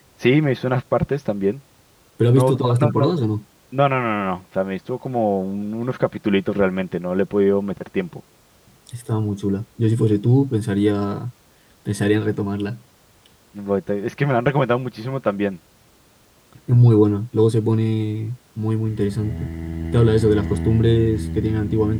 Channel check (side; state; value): both; identical; correlation 1.00